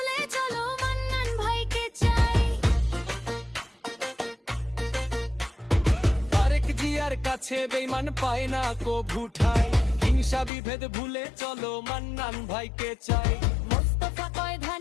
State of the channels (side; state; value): right; drops out; at 10.5 s